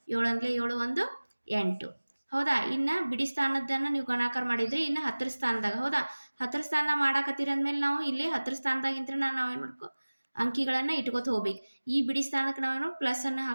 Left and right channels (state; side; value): inverted; both; correlation -1.00